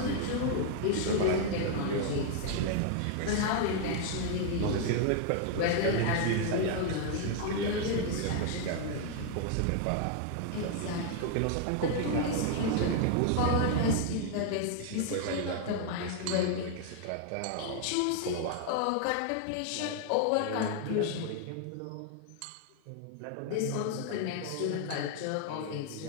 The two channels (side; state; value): both; different; correlation 0.00